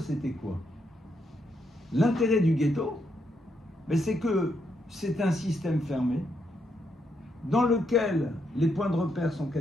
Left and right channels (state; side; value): normal; both; correlation 0.78